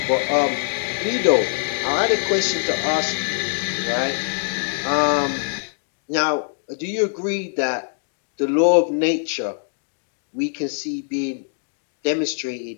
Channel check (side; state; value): right; silent; digital silence